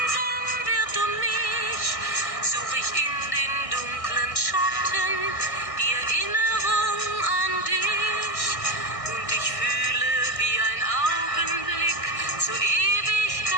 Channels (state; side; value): late; right; 1.6 ms